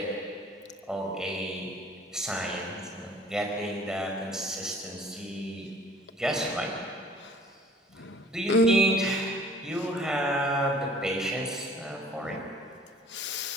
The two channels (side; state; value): both; normal; correlation 0.52